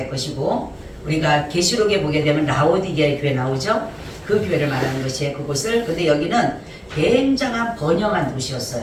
것이고 우리가 계시록에 보게 되면 라오디게아 교회 나오죠. 그 교회를 말하는 것이에요. 그곳을. 근데 여기는 굉장한 번영한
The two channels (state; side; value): identical; both; correlation 1.00